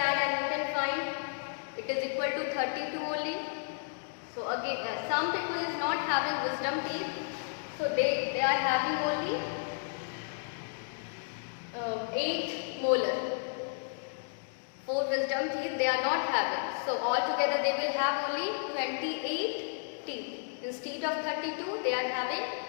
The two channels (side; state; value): right; silent; digital silence